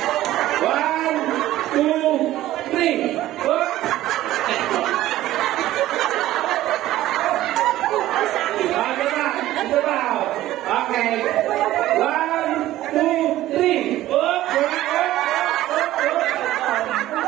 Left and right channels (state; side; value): quieter; left; 14.8 dB